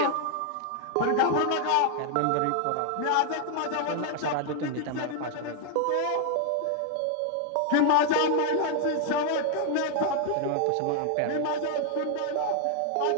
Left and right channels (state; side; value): different; both; correlation 0.00